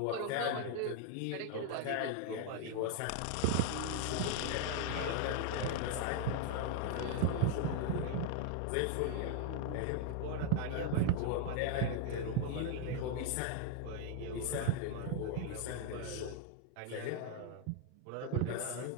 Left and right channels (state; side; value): different; both; correlation 0.00